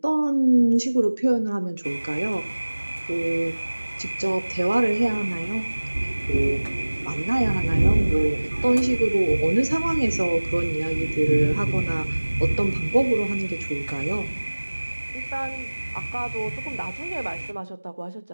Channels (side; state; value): both; inverted; correlation -1.00